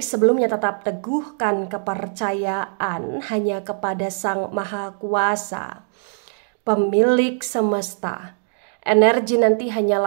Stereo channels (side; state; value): left; silent; digital silence